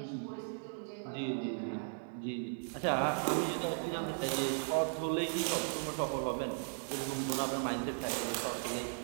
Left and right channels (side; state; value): left; silent; digital silence